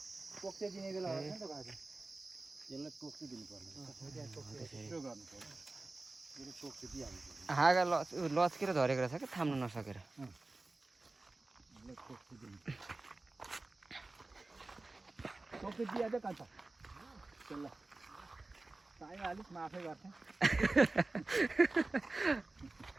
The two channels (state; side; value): quieter; left; 3.2 dB